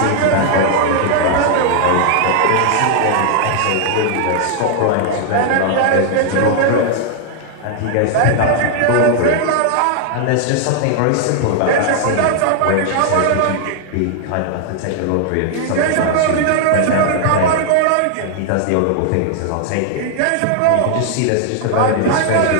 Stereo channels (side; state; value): both; different; correlation 0.00